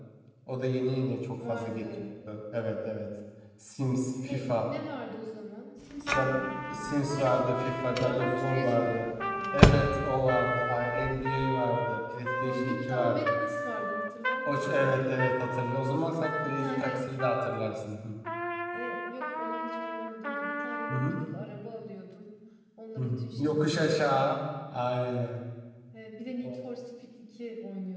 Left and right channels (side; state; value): both; identical; correlation 1.00